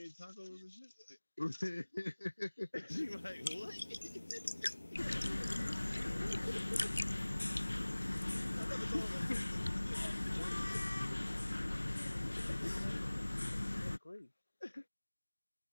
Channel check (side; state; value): both; inverted; correlation -1.00